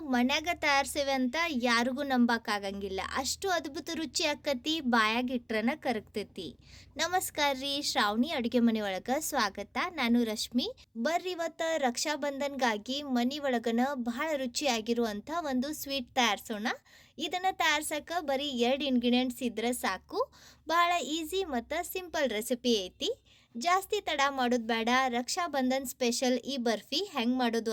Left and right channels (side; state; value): both; identical; correlation 1.00